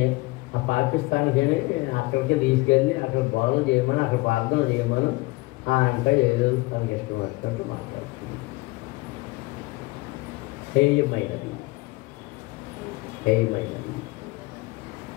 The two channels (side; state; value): right; quieter; 22.8 dB